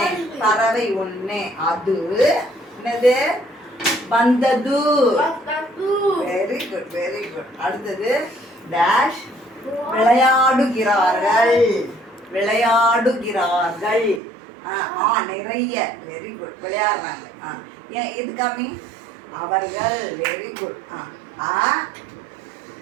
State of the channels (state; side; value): drops out; left; at 14.2 s